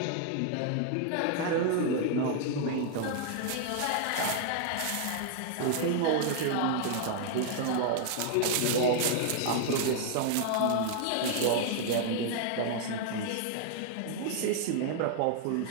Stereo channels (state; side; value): different; both; correlation 0.00